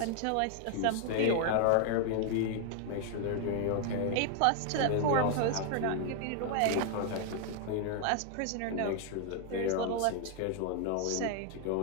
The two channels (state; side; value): different; both; correlation 0.00